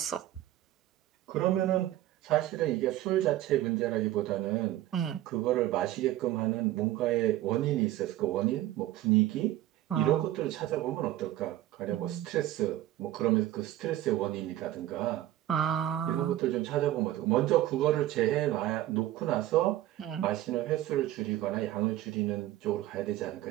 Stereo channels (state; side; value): quieter; left; 14.2 dB